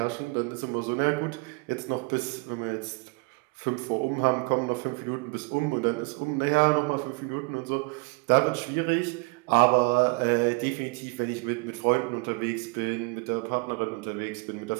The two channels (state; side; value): quieter; left; 29.7 dB